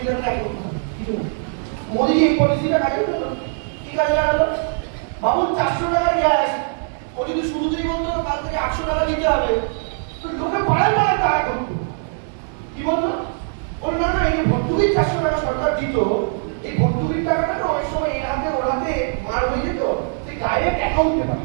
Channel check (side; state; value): left; silent; 64 dB below the other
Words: দেখো কিছু না। মোদি এই পলিসিটা কাজে লাগালো, কি কাজে লাগালো? বাবু 400 টাকার গ্যাস ও যদি শুরুতেই বলতো কাল থেকে 800 টাকা দিতে হবে, তো লোকে পাড়ায় পাড়ায় তারা করতো। কি বলতো? বল না না, এই যে ভর্তুকির 400 টাকা সরকার দিত, এই ভর্তুকির টাকাটা না অনেক সময় এর হাতে ওর হাতে মার হয়ে যেত, সেই ডাইরেক্ট অ্যাকাউন্টে